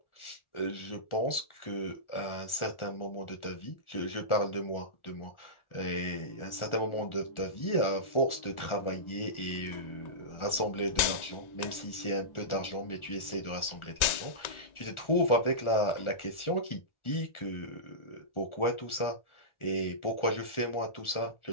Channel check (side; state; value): right; late; 1.4 ms